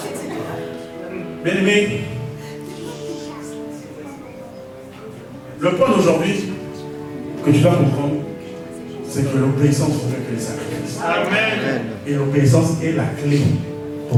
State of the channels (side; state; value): both; identical; correlation 1.00